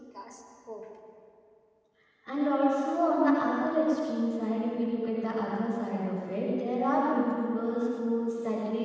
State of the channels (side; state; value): both; identical; correlation 1.00